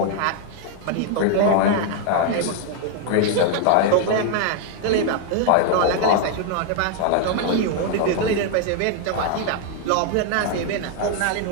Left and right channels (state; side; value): different; both; correlation 0.00